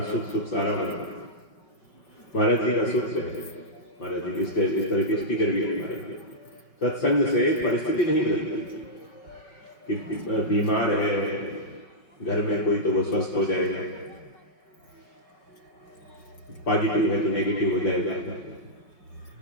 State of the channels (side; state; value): right; late; 5.3 ms